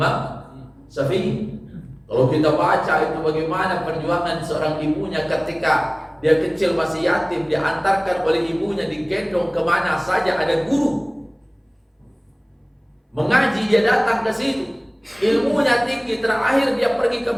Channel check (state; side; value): identical; both; correlation 1.00